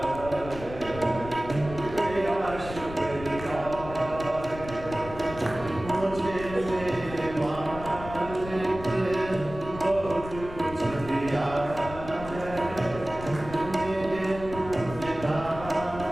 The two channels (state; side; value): noise; left; rumble, 12 dB below the sound